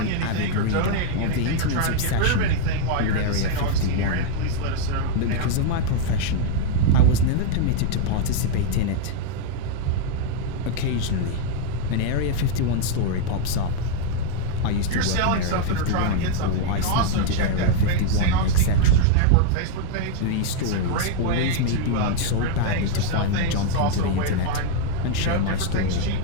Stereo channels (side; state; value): both; different; correlation 0.00